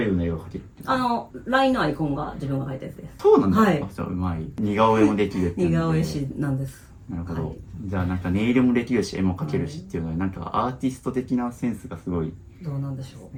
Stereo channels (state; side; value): identical; both; correlation 1.00